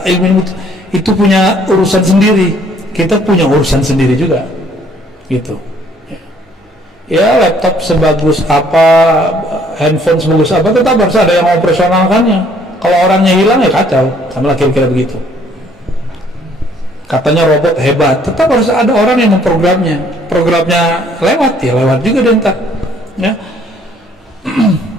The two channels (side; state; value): both; normal; correlation 0.62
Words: ilmu itu punya urusan sendiri. Kita punya urusan sendiri juga, gitu. Ya, laptop sebagus apa, handphone sebagus apa, tetap harus ada yang operasionalkannya. Kalau orangnya hilang ya kacau, sama lah kira-kira begitu. Katanya robot hebat, tetap harus ada orang yang memprogramnya. Programnya lewat ya lewat juga deh ntar. Ya.